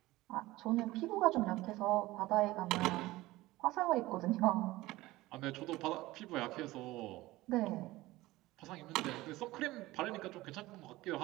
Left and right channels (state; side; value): quieter; left; 18.5 dB